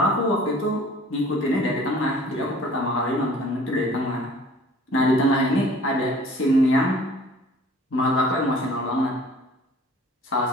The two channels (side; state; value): both; normal; correlation 0.50